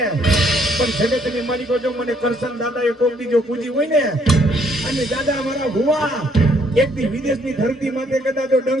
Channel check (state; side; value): normal; both; correlation 0.66